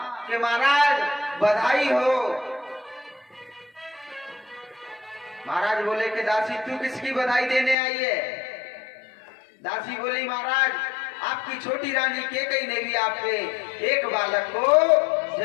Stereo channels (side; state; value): right; drops out; at 7.8 s